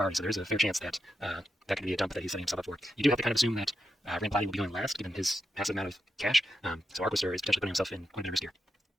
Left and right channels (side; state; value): both; normal; correlation 0.86